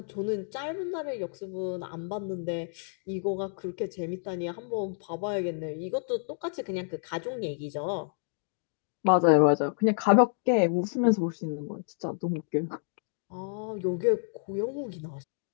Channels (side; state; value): right; silent; 58 dB below the other